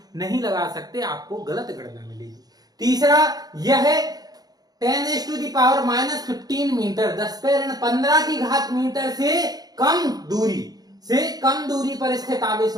नहीं लगा सकते, आपको गलत गणना मिलेगी। तीसरा, यह 10⁻⁻15 मीटर 10⁻15 की घात मीटर से कम दूरी पर स्थित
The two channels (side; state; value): left; late; 0.19 ms